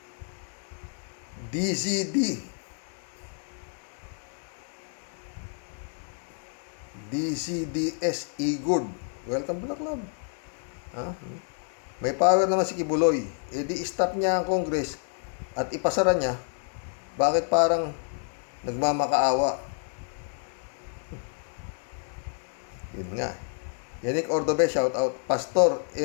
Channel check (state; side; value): silent; right; 59 dB below the other